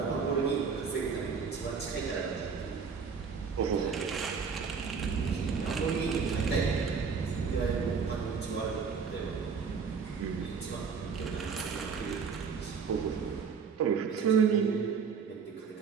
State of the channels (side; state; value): left; quieter; 5.8 dB